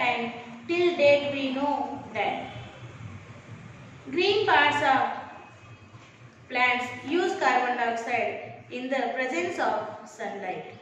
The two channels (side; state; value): both; identical; correlation 1.00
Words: till date we know that green parts of plants use carbon dioxide in the presence of sunlight.